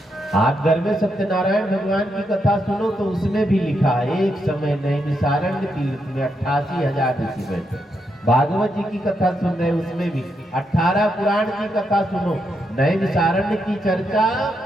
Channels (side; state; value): both; normal; correlation 0.81